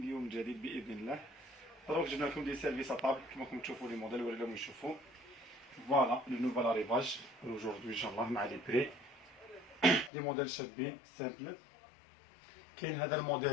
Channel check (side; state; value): right; drops out; at 10.1 s